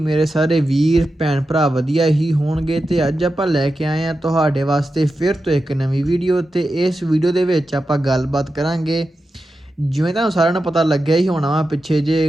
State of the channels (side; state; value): both; normal; correlation 0.91